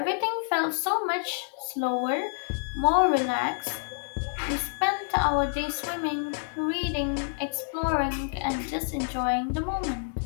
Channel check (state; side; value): silent; right; digital silence